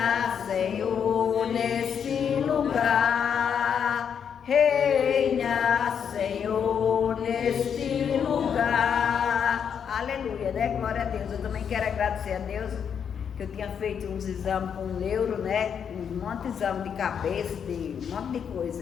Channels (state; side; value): quieter; right; 7.6 dB